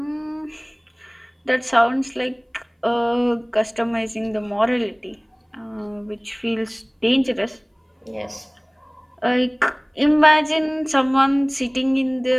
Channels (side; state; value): both; identical; correlation 1.00